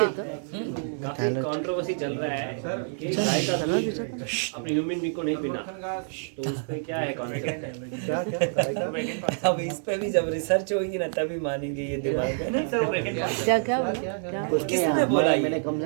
काफी कंट्रोवर्सी चल रहा है कि गाय का दूध अपने ह्यूमन बींग को नहीं पीना, तो उस पे क्या है कॉन्सेप्ट? अब इस पे भी जब रिसर्च होगी ना तभी मानेंगे ये दिमाग में। किसने बोला? मैंने कम से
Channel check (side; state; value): left; silent; 60 dB below the other